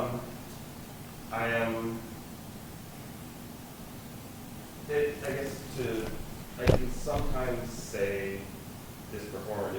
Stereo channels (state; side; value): identical; both; correlation 1.00